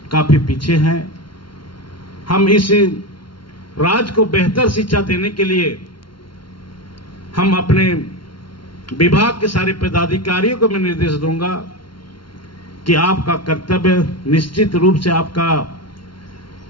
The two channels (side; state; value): right; late; 0.73 ms